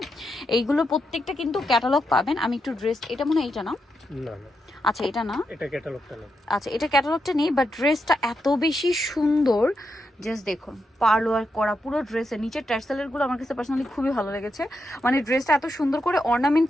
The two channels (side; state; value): both; normal; correlation 0.84